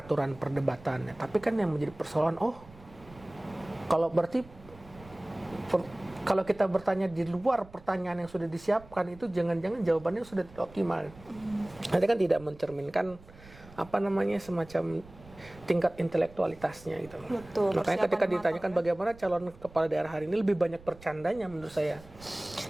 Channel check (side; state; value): right; noise; rumble, 21 dB below the sound